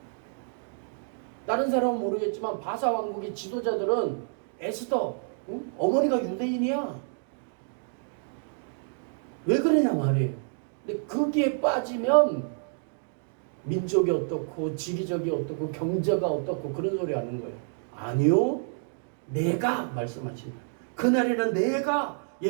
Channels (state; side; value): silent; left; digital silence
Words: 다른 사람은 모르겠지만 바사 왕국의 지도자들은 에스더, 어머니가 유대인이야. 왜 그러냐 말이에요. 근데 거기에 빠지면 민족이 어떻고 지리적이 어떻고 경제가 어떻고 그런 소리 하는 거예요. 아니요. 내가 말씀하신다. 그날에는 내가